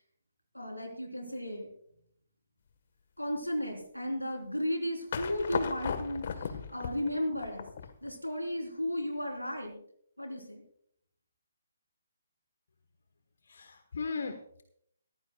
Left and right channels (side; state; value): both; inverted; correlation -0.89